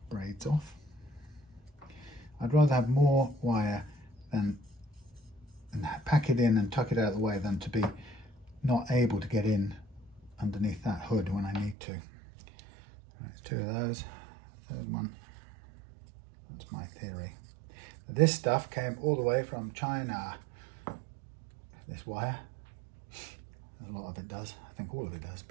braids off. I'd rather have more wire than and pack it in and tuck it out of the way than to be not able to get in underneath that hood when I need to. That's 2 of those. Third one. That's my theory. This stuff came all the way from China. This wire. A lot of it does. I think all of it does,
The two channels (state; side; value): drops out; left; at 11.8 s